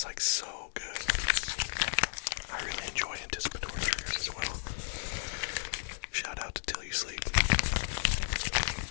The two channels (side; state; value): right; silent; 55 dB below the other